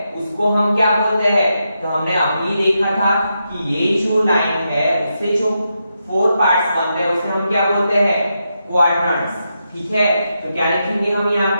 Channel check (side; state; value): both; inverted; correlation -0.85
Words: उसको हम क्या बोलते हैं? तो हमने अभी देखा था कि ये जो लाइन है उससे जो 4 पार्ट्स बनते हैं उसे हम क्या बोलते हैं? क्वाड्रेंट्स। ठीक है, तो क्या लिखेंगे हम यहाँ